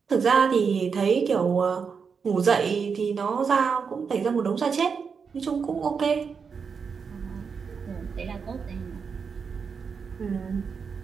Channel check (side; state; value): left; quieter; 5.9 dB